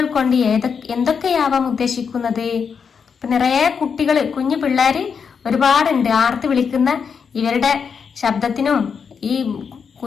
കൊണ്ട് എന്തൊക്കെയാവാം ഉദ്ദേശിക്കുന്നത്? ഇപ്പൊ നിറയെ കുട്ടികൾ, കുഞ്ഞു പിള്ളേര് ഒരുപാടുണ്ട്. ആർത്ത് വിളിക്കുന്ന ഇവരുടെ ശബ്ദത്തിനും ഈ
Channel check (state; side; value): quieter; right; 6.3 dB